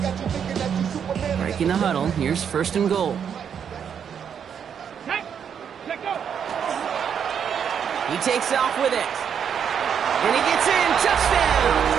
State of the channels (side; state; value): left; quieter; 7.8 dB